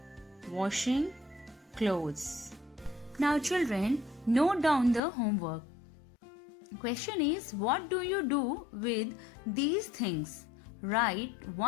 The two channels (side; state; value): right; drops out; at 5.0 s